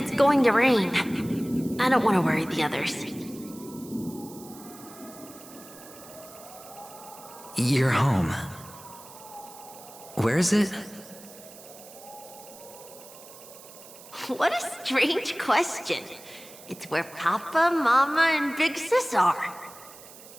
going to rain. I don't want to worry the others. You're home. Where is it? What a strange question. It's where Papa, Mama, and Big Sis are.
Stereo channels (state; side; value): noise; right; hiss, 18 dB below the sound